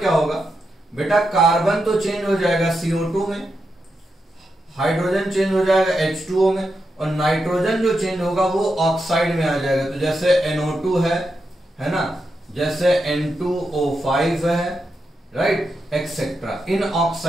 होगा बेटा, कार्बन तो चेंज हो जाएगा CO2 में, हाइड्रोजन चेंज हो जाएगा H2O में, और नाइट्रोजन जो चेंज होगा वो ऑक्साइड में आ जाएगा। तो जैसे NO2 है ना, जैसे N2O5 है, राइट, एक्सेट्रा, इन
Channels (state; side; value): normal; both; correlation 0.86